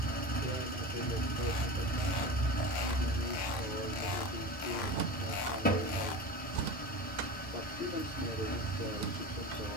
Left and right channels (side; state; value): both; normal; correlation 0.29